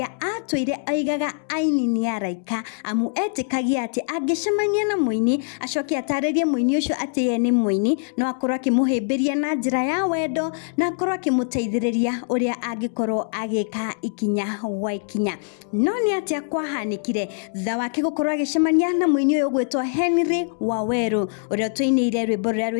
atũire aigaga aini nĩ araika amu etĩkagia atĩ angĩcemania na mũini acoke atarĩrie mũini ũcio atĩ ye nĩ mũini no akorwo akĩmũhĩmbĩria na njĩra ya wendo na akorwo akĩmũteithĩrĩria ũrĩa angĩkorwo agĩka ikinya wa ikinya. No nĩ atĩa kwahanĩkire thutha wake gũkorwo agĩcemania na mũini ũyũ ũgwĩtwo WAWERU ũrĩa tũinĩire rwĩmbo rũrĩa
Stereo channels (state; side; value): silent; right; 63 dB below the other